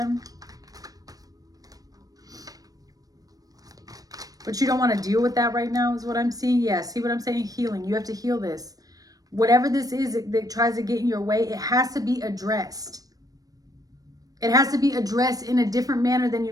But you don't want to deal with that right now is what I'm seeing. Yeah, see what I'm saying? Healing. You have to heal this. Whatever this is that tries to get in your way, it has to be addressed. It has to be addressed in a different manner than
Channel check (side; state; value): left; late; 0.18 ms